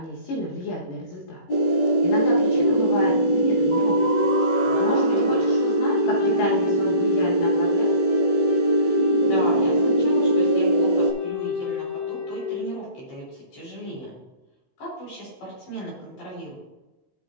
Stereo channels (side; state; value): right; late; 16 ms